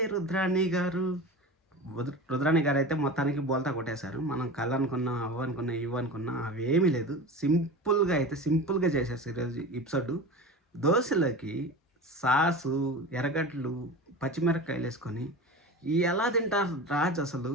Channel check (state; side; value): normal; both; correlation 0.31